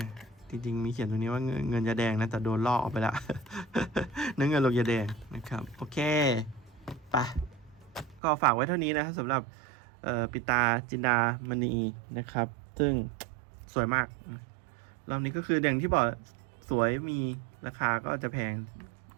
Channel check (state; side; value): drops out; left; at 8.2 s